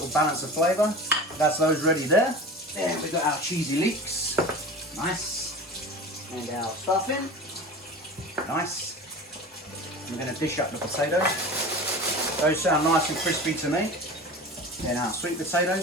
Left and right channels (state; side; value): normal; both; correlation 0.34